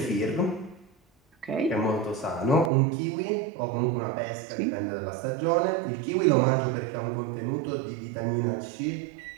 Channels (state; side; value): drops out; left; at 2.7 s